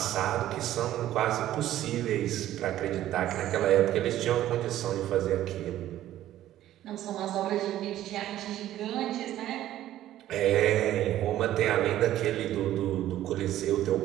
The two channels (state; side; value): quieter; left; 13.2 dB